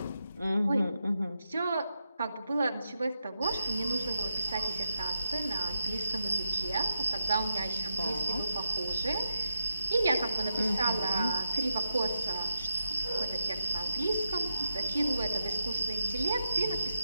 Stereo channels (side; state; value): both; inverted; correlation -0.84